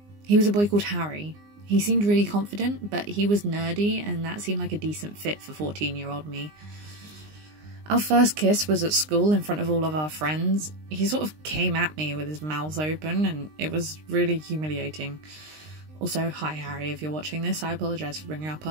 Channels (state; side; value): late; left; 20 ms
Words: He was a boy called Harry. He seemed really confident, but he was nerdy, and that seemed like a decent fit for 14-year-old me. Our first kiss was at school in front of all of our friends. He sort of came at me with his mouth open, and it was really humiliating. Also, hi Harry, if you're watching this, I apologise for bringing up